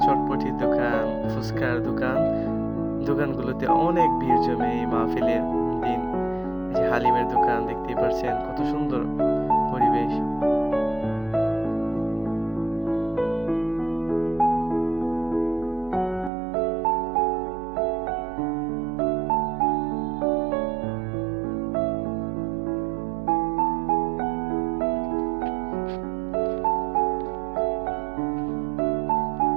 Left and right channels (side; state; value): left; drops out; at 16.3 s